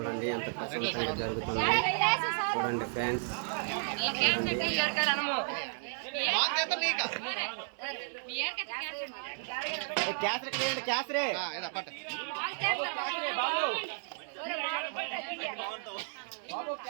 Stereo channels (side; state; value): left; silent; 56 dB below the other